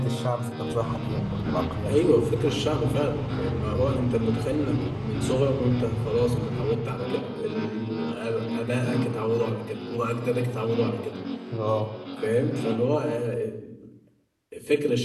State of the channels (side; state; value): both; identical; correlation 1.00